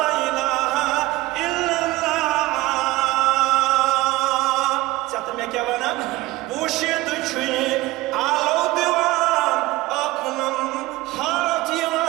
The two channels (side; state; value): left; quieter; 18.6 dB